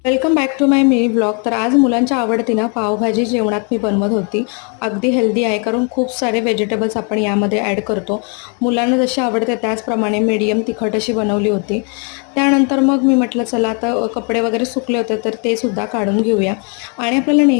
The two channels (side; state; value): right; quieter; 37.4 dB